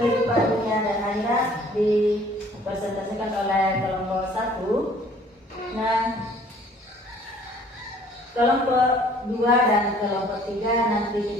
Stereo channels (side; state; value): both; normal; correlation 0.55